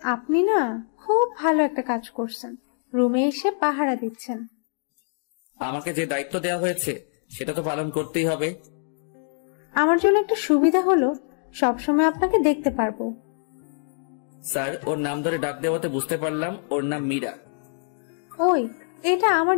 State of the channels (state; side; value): silent; right; digital silence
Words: আপনি না খুব ভালো একটা কাজ করছেন, রুমে এসে পাহারা দিচ্ছেন। আমাকে যে দায়িত্ব দেওয়া হয়েছে সেটা তো পালন করতেই হবে। আমার জন্য একটা সুবিধা হলো সবসময় আপনাকে দেখতে পারবো। স্যার, ওর নাম ধরে ডাক দেওয়াতে বুঝতে পারলাম ওর নাম মীরা। ওই, এটা আমার